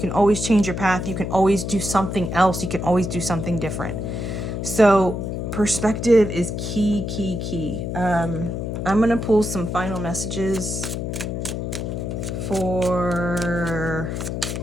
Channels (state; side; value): noise; left; hum, 4 dB below the sound